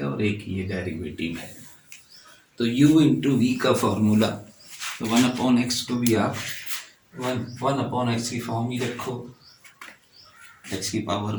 और एक ये डेरिवेटिव है. तो u इंटू वी का फॉर्मूला, तो 1 अपॉन एक्स को भी आप 1 अपॉन एक्स की फॉर्म ही रखो, एक्स की पावर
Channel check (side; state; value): both; identical; correlation 1.00